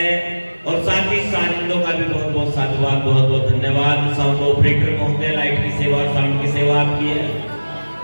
और साथ ही साजिंदों का भी बहुत बहुत साधुवाद, बहुत बहुत धन्यवाद। साउंड ऑपरेटर महोदय, लाइट की सेवा और साउंड की सेवा आपकी है।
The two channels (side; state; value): both; inverted; correlation -1.00